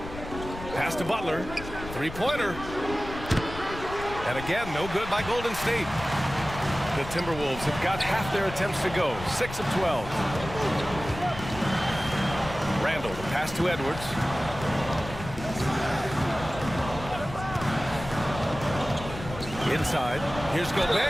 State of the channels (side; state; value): left; noise; rumble, 11 dB below the sound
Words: Pass to Butler. Three-pointer. And again, no good by Golden State. The Timberwolves have got half their attempts to go. 6 of 12. Randall, the pass to Edwards. Inside. Here's